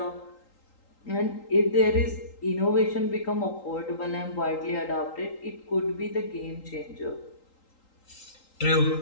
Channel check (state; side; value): late; right; 3.8 ms